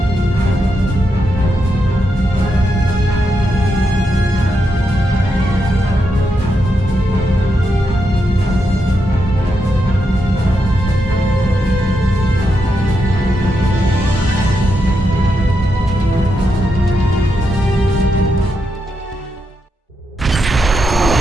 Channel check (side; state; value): both; normal; correlation 0.83